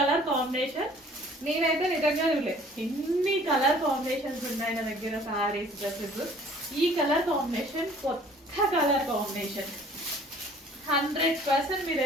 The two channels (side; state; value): both; normal; correlation 0.53